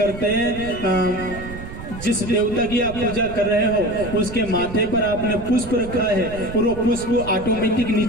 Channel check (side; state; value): right; noise; rumble, 11 dB below the sound